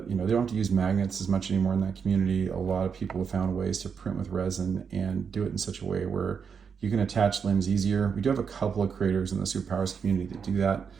you know, they don't have to use magnets as much anymore in that community. A lot of people have found ways to print with resin and do it in such a way where you can attach limbs easier. We do have a couple of creators in the superpowers community that do that,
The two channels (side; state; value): left; quieter; 6.4 dB